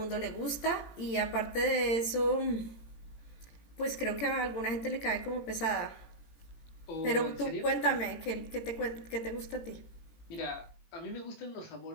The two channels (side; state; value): right; late; 18 ms